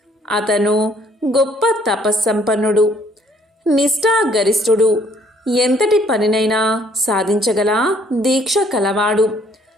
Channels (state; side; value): normal; both; correlation 0.62